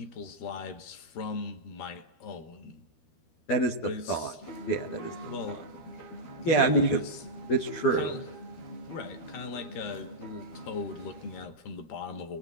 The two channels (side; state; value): right; late; 13 ms